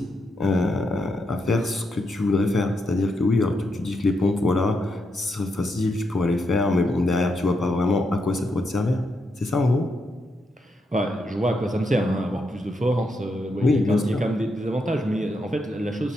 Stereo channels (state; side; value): normal; both; correlation 0.81